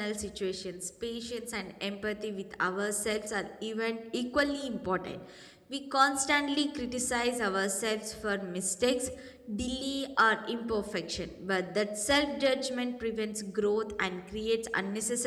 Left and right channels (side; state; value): both; identical; correlation 1.00